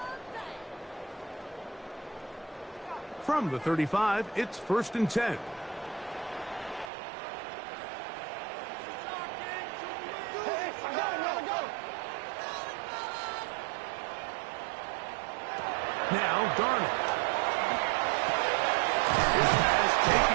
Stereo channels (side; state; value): left; drops out; at 6.9 s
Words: From the 35, it's 1st and 10. Now, Darnold. His pass